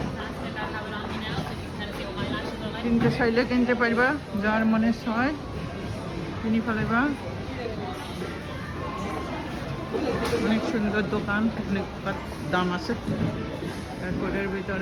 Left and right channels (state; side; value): identical; both; correlation 1.00